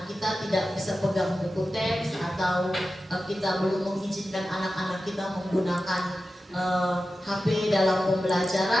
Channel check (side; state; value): both; normal; correlation 0.93